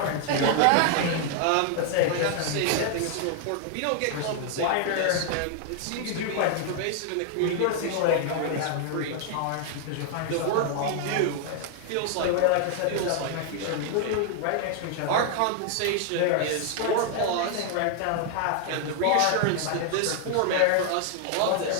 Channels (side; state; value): both; different; correlation 0.00